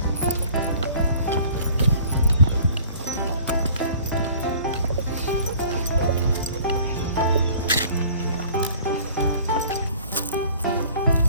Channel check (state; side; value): inverted; both; correlation -0.50